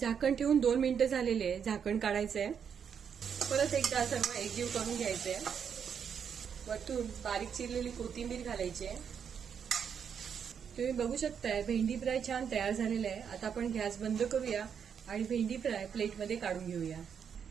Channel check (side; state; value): left; quieter; 7.4 dB